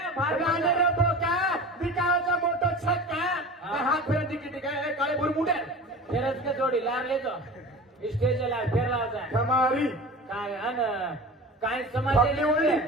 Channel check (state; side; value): normal; both; correlation 0.35